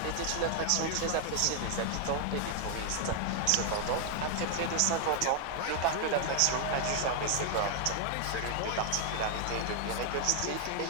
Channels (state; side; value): different; both; correlation 0.00